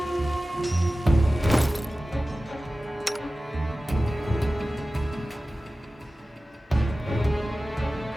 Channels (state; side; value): normal; both; correlation 0.96